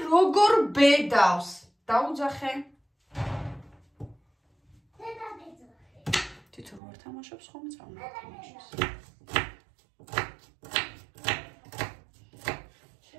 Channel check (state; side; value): drops out; left; at 6.8 s